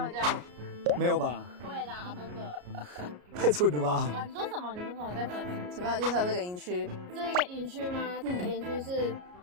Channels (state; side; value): late; left; 33 ms